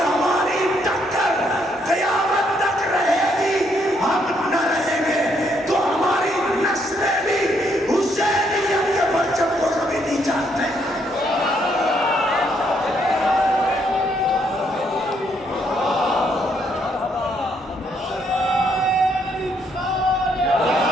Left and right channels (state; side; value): normal; both; correlation 0.72